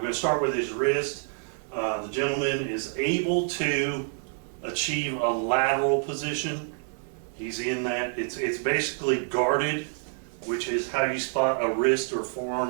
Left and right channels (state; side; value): silent; left; 60 dB below the other